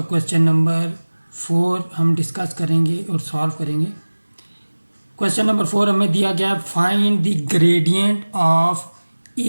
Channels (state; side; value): inverted; both; correlation -1.00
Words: क्वेश्चन नंबर 4 हम डिस्कस करेंगे और सॉल्व करेंगे। क्वेश्चन नंबर 4 हमें दिया गया, find the gradient of